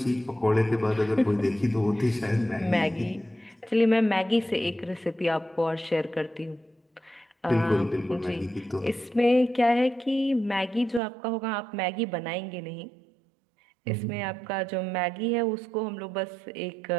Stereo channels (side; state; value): left; drops out; at 11.0 s